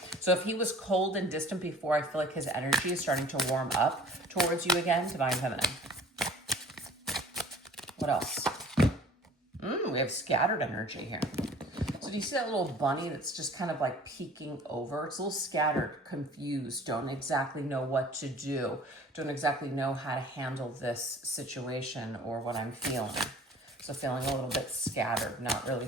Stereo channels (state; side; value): normal; both; correlation 0.48